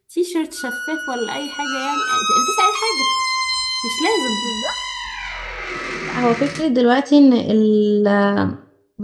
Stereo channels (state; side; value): identical; both; correlation 1.00